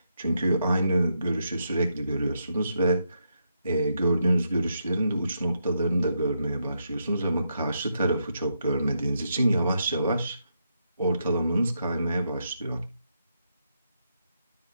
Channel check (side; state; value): both; inverted; correlation -0.81